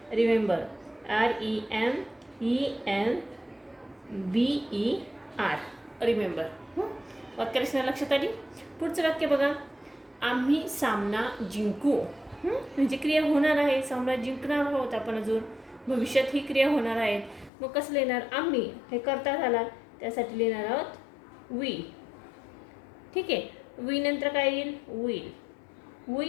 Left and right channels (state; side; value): drops out; right; at 17.5 s